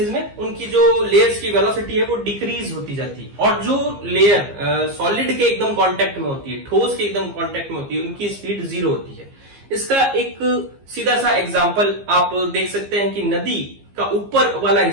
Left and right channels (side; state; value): left; late; 15 ms